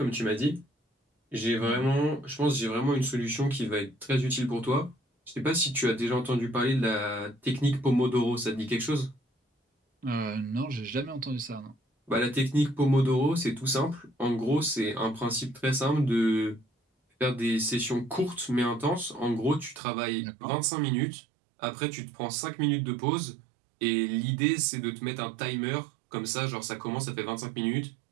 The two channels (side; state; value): left; drops out; at 19.8 s